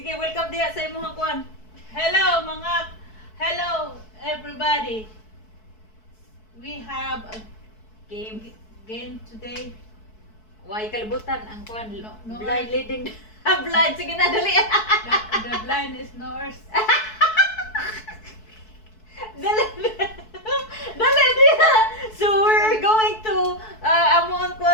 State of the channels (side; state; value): right; late; 4.6 ms